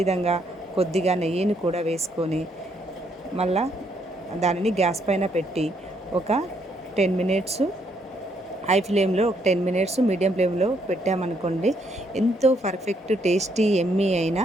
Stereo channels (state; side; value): normal; both; correlation 0.72